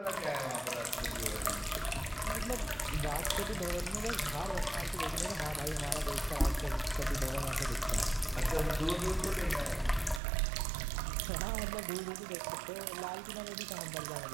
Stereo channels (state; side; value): drops out; left; at 10.2 s